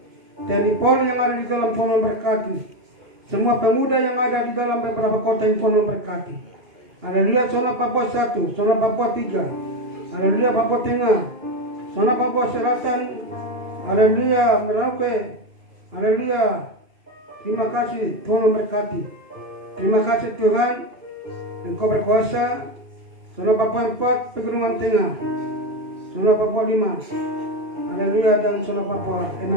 TNI Polri yang ada di dalam Tuhan memberkati. Semua pemuda yang ada di dalam beberapa kota yang Tuhan memberkati. Haleluya, zona Papua 1, zona Papua 3. Haleluya, Papua Tengah, zona Papua Selatan. Haleluya, Merauke. Haleluya. Terima kasih Tuhan memberkati. Terima kasih Tuhan, Engkau berkuasa. Zona Papua 4, Pegunungan Tengah. Zona Papua 5, haleluya, dan zona Papua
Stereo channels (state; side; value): late; left; 2.8 ms